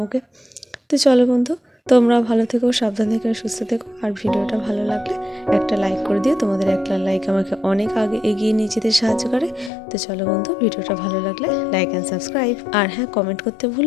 ওকে। তো চলো বন্ধু, তোমরা ভালো থেকো, সাবধান থেকো, সুস্থ থেকো। আর ভিডিওটা ভালো লাগলে একটা লাইক করে দিও, তোমাদের একটা লাইক আমাকে অনেক আগে এগিয়ে নিয়ে যেতে সাহায্য করে। তো চলো বন্ধু, ভিডিওটা ভালো লাগলে লাইক অ্যান্ড সাবস্ক্রাইব, আর হ্যাঁ কমেন্ট করতে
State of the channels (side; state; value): right; drops out; at 9.7 s